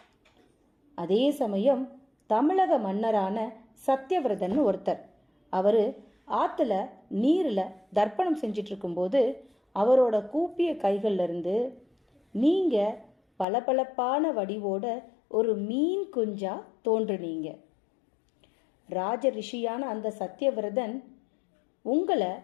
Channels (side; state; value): right; drops out; at 13.5 s